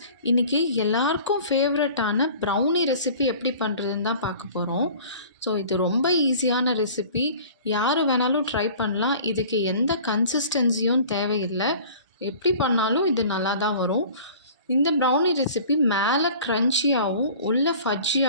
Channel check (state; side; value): inverted; both; correlation -0.45